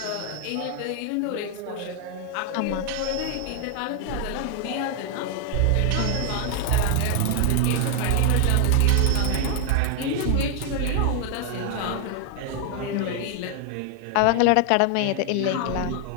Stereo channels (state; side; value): different; both; correlation 0.00